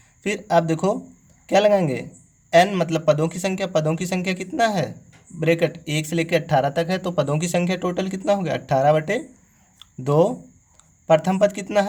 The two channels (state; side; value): identical; both; correlation 1.00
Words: फिर आप देखो क्या लगाएंगे, एन मतलब पदों की संख्या कितना है, ब्रैकेट 1 से लेकर 18 तक है, तो पदों की संख्या टोटल कितना हो गया 18/2। प्रथम पद कितना